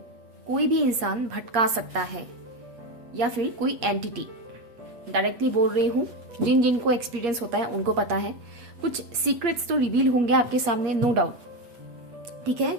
कोई भी इंसान भटका सकता है, या फिर कोई एंटिटी। डायरेक्टली बोल रही हूँ, जिन जिन को एक्सपीरियंस होता है उनको पता है। कुछ सीक्रेट्स तो रिवील होंगे आपके सामने, नो डाउट, ठीक है,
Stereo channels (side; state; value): left; late; 8.2 ms